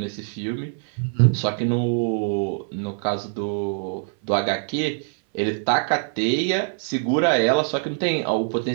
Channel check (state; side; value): silent; left; 61 dB below the other